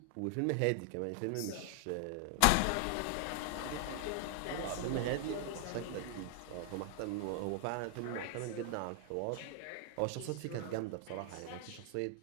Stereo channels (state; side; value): different; both; correlation 0.00